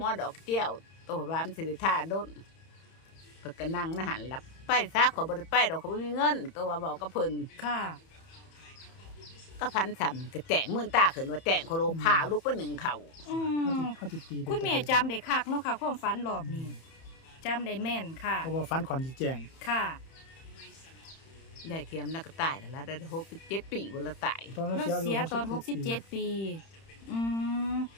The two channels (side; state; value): right; late; 31 ms